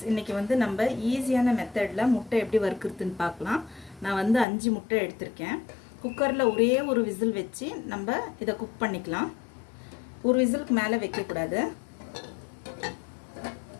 இன்றைக்கி நம்ம ஈஸியான மெத்தடில் முட்டை எப்படி வறுக்கிறதுன்னு பார்க்கலாம். நான் 5 முட்டை எடுத்திருக்கேன். குக்கரில் ஒரே ஒரு விசில் வச்சு நம்ம இதை குக் பண்ணிக்கலாம். ஒரு விசிலுக்கு மேலே வைக்கக்கூடாது.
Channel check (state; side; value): drops out; right; at 4.5 s